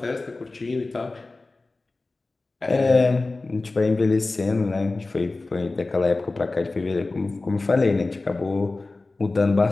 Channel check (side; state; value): right; quieter; 3.3 dB